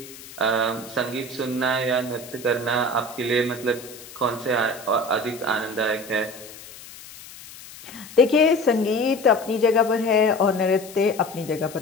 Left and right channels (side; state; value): left; noise; hiss, 17 dB below the sound